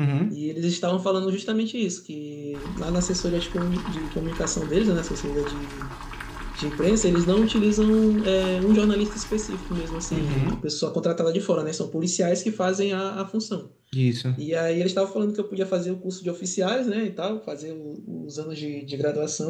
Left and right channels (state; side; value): identical; both; correlation 1.00